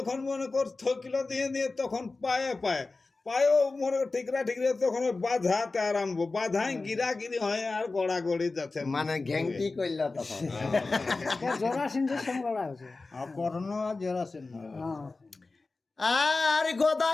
মনে কর থকিলো দিয়ে দিয়ে তখন পায়ে পায়ে পায়েও মনে কর ঠিকরা ঠিকরা তখন বাঁধাতে আরম্ভ, বাঁধাই গিরা গিরি হয় আর গড়া গড়ি যাচ্ছে। মানে ঘ্যাংটি করল তখন। জরাসিন্ধের সঙ্গে লড়াই হয়েছে। আর কর্ণ আর জরাসন্ধ আর গদা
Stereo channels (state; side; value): quieter; right; 3.6 dB